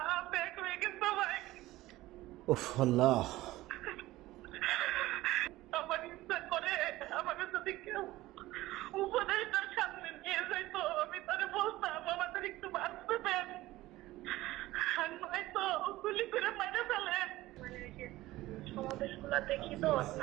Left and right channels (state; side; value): quieter; left; 17.4 dB